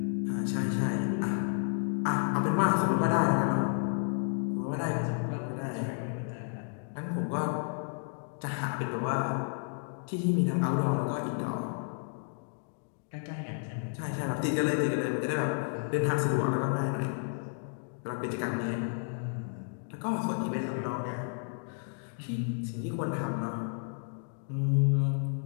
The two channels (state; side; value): silent; right; 57 dB below the other